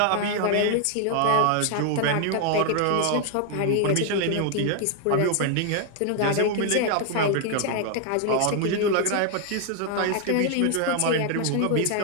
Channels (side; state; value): both; different; correlation 0.00